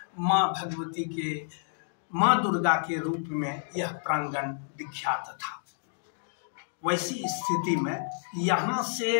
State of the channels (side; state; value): right; silent; digital silence